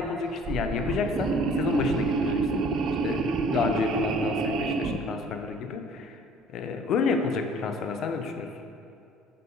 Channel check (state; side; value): normal; both; correlation 0.52